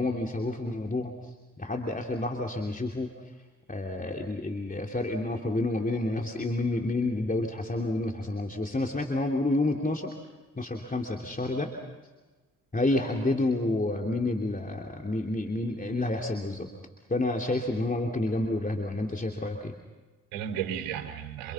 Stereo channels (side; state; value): both; normal; correlation 0.67